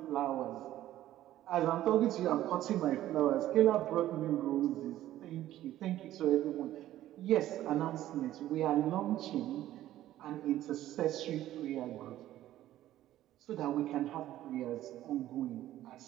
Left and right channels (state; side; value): quieter; left; 13.7 dB